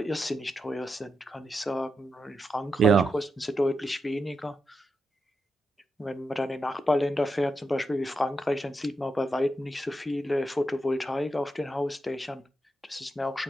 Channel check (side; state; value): both; normal; correlation 0.86